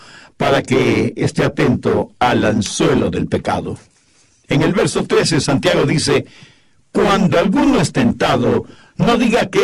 para que esté atento al anzuelo del pecado. En el verso 13, Santiago dice, cuando alguno es tentado, no diga que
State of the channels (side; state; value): both; identical; correlation 1.00